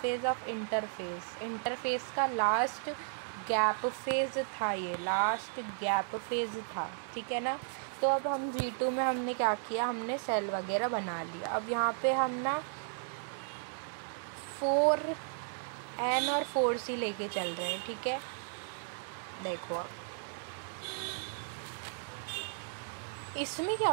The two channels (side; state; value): left; silent; digital silence